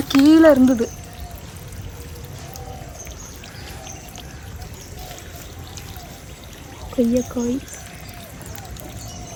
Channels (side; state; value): both; identical; correlation 1.00